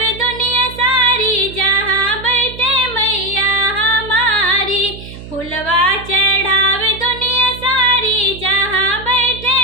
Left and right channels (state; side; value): noise; right; hum, 14 dB below the sound